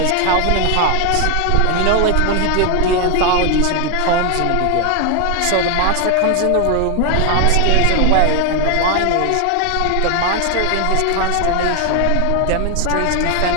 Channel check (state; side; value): different; both; correlation 0.01